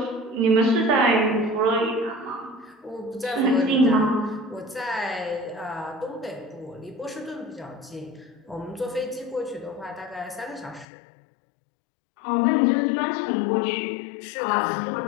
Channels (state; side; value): drops out; right; at 10.9 s